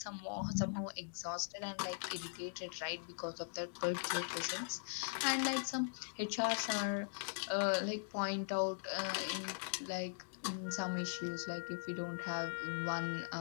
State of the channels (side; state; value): right; silent; digital silence